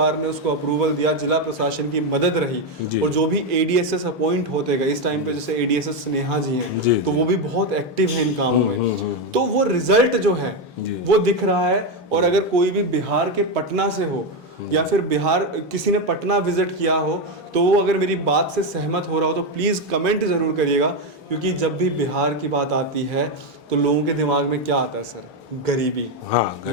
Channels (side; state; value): both; normal; correlation 0.08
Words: ने उसको अप्रूवल दिया, जिला प्रशासन की मदद रही, और जो भी एडीएसएस अपॉइंट होते गए इस टाइम पे, जैसे एडीएसएस स्नेहा जी हैं, तो वो भी बहुत एक्टिव हैं इन कामों में, तो वो रिजल्ट जो है वो दिख रहा है। और अगर कोई भी बिहार के पटना से हो या फिर बिहार किसी ने पटना विजिट किया हो, तो वो अगर मेरी बात से सहमत हो रहा हो तो प्लीज़ कमेंट ज़रूर करिएगा, क्योंकि जब भी बिहार की बात आती है तो लोगों के दिमाग में क्या आता है सर? गरीबी, हाँ,